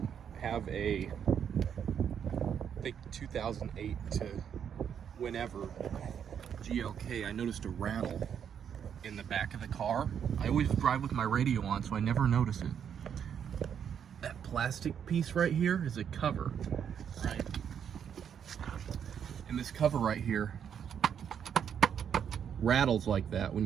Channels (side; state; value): left; quieter; 8.2 dB